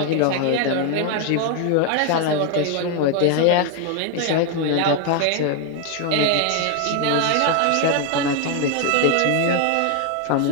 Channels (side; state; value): both; different; correlation 0.01